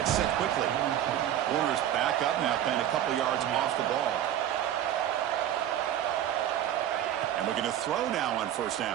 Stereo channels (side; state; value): left; quieter; 11.3 dB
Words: set quickly. Warner's back up now, playing a couple yards off the ball. And looking to throw now on first